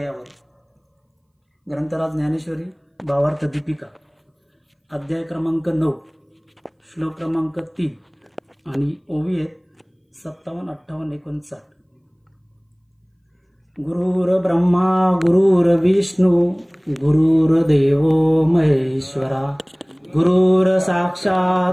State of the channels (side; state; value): both; identical; correlation 1.00